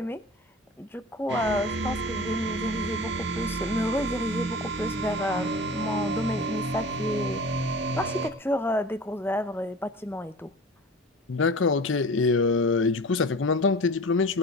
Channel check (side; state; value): both; normal; correlation 0.37